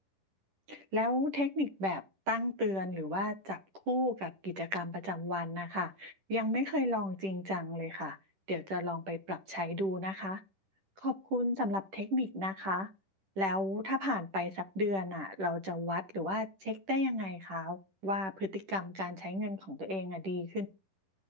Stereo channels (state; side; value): late; left; 10 ms